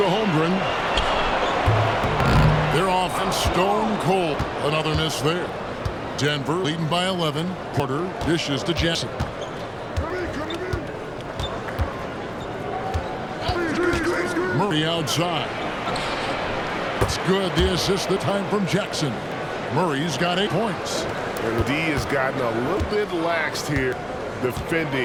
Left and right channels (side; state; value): both; identical; correlation 1.00